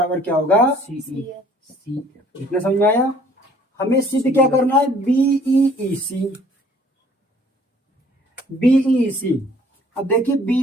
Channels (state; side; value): normal; both; correlation 0.57